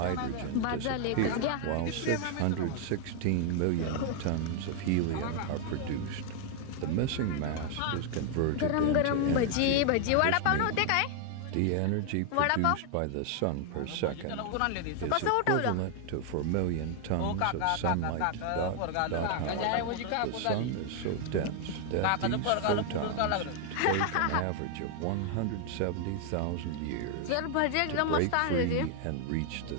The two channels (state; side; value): different; both; correlation 0.00